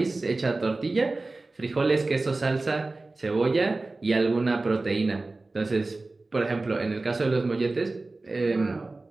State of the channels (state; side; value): quieter; left; 3.3 dB